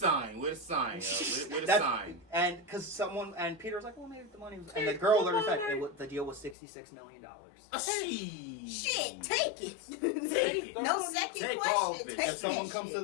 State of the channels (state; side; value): drops out; right; at 6.6 s